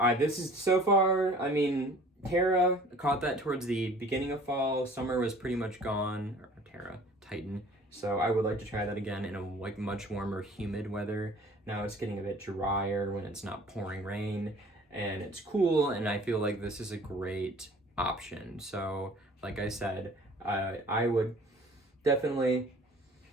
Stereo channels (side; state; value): both; normal; correlation 0.49